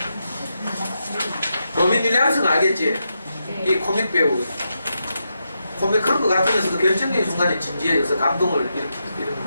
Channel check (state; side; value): inverted; both; correlation -0.85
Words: 로빈 윌리엄스는 알겠지? 이 코믹 배우. 코믹 그런 거 같으면서도 결정적인 순간에 진지해져서 감동을